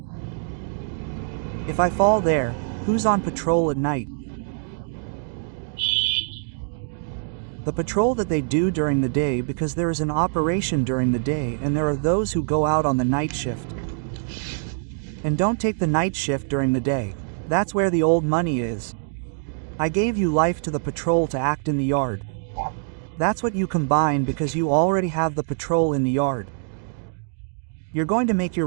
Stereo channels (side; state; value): left; silent; 63 dB below the other